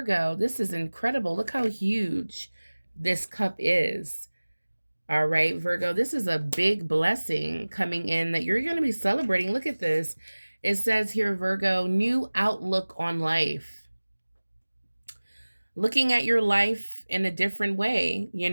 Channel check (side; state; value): both; inverted; correlation -1.00